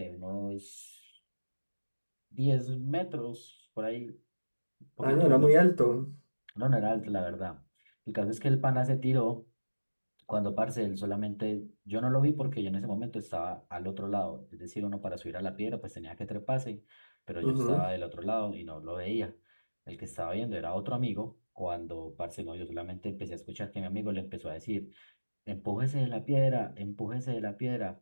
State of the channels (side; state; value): both; inverted; correlation -1.00